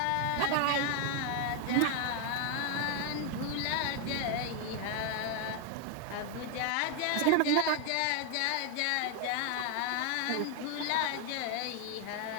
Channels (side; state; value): both; different; correlation 0.01